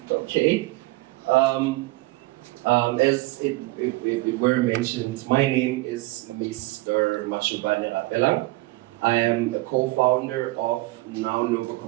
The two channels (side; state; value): left; quieter; 21.0 dB